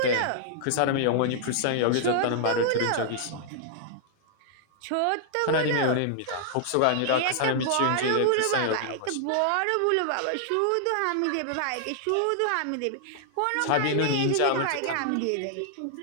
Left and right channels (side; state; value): both; different; correlation -0.01